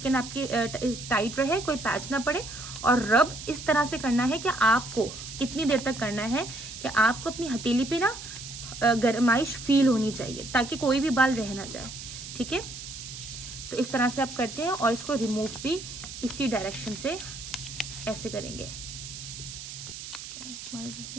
आपकी टाइट रहे, कोई पैच ना पड़े। और रब इस तरह से करना है कि आपको कितनी देर तक करना है कि आपको अपनी हथेली पे ना गरमाइश फील होनी चाहिए ताकि कोई भी बाल रह ना जाए, ठीक है। तो इस तरह से आप करते हैं और इसको रिमूव भी इसी डायरेक्शन से ऐसे करेंगे।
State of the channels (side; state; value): right; noise; hiss, 11 dB below the sound